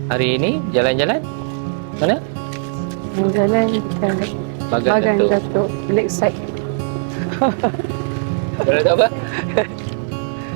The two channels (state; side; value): silent; left; 67 dB below the other